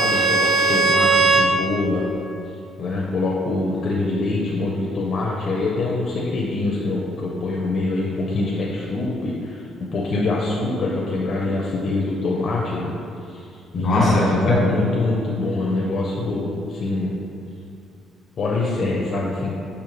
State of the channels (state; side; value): normal; both; correlation 0.65